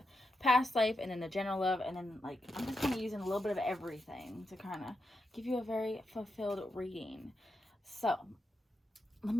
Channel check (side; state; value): both; normal; correlation 0.86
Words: past life and then the general love, and then like I'm just kind of using a little bit of everything to kind of give you a very fulfilled reading. So let